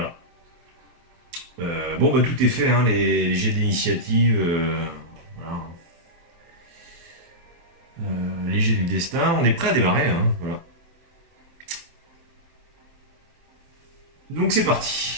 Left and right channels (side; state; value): left; late; 23 ms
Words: Bon, bah tout est fait, hein, les jets d'initiative, voilà. Les jets du destin, on est prêt à démarrer, hein, voilà. Donc c'est